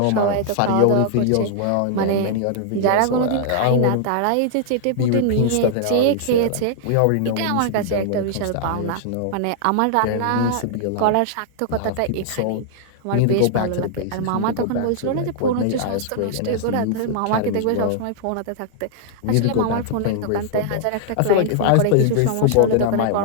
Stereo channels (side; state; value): both; different; correlation -0.01